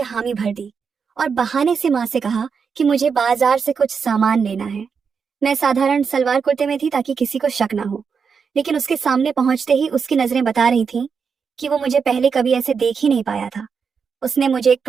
हामी भर दी और बहाने से माँ से कहा कि मुझे बाजार से कुछ सामान लेना है। मैं साधारण सलवार कुर्ते में थी ताकि किसी को शक ना हो, लेकिन उसके सामने पहुंचते ही उसकी नजरें बता रही थीं कि वो मुझे पहले कभी ऐसे देख ही नहीं पाया था। उसने मुझे एक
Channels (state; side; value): quieter; left; 6.0 dB